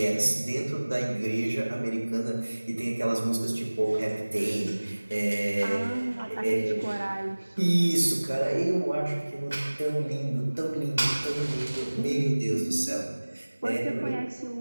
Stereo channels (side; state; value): both; inverted; correlation -1.00